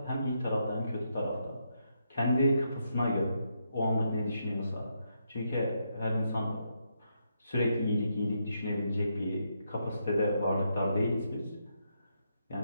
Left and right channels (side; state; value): both; inverted; correlation -0.80